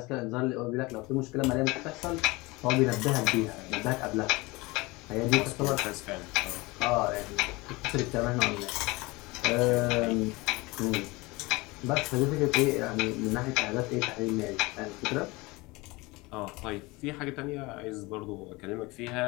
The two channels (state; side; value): quieter; right; 23.3 dB